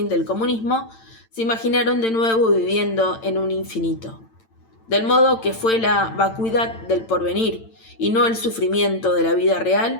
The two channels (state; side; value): late; right; 8.9 ms